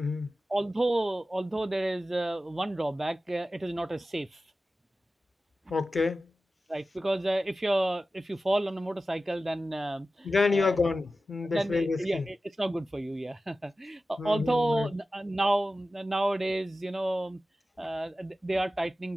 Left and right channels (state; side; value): normal; both; correlation 0.94